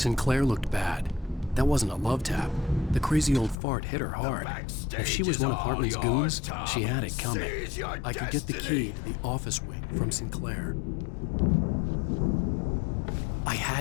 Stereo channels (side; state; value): right; drops out; at 3.6 s